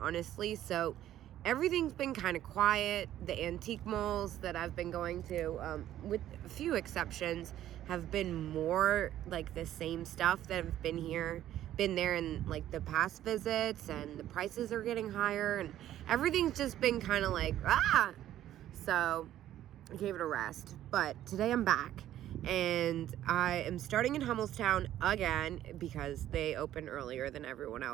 So everything's been kind of quiet. The antique malls that I've been going to, with a few exceptions, have been more like the same stuff that have been there in like the past visits, and the prices are getting higher, and everything's just been kind of like, So I gave it a rest. But today I'm back. And I am starting in Hummelstown again because they open earlier than everyone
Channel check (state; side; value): quieter; left; 12.5 dB